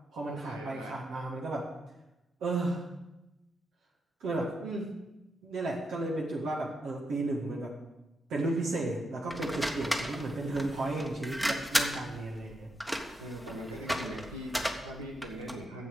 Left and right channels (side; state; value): both; normal; correlation 0.83